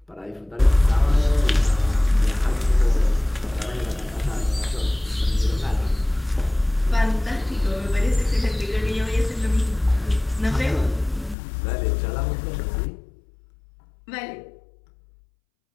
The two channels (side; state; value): right; drops out; at 11.4 s